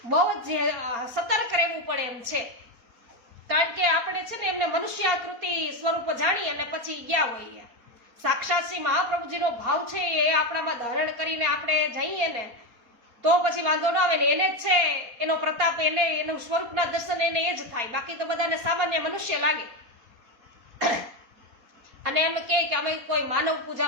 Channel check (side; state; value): left; late; 4.2 ms